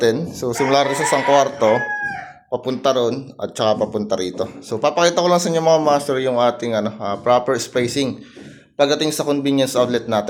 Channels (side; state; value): both; identical; correlation 1.00